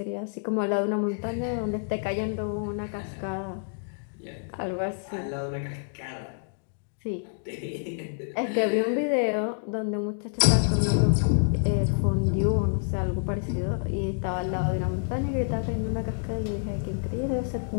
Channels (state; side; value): silent; right; digital silence